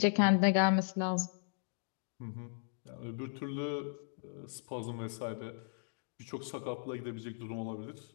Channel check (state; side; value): silent; right; digital silence